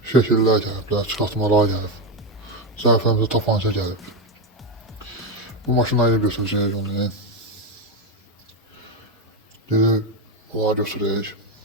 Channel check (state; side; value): normal; both; correlation 0.10